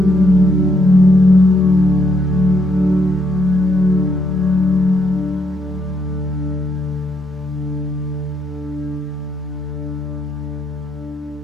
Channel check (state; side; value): normal; both; correlation 0.75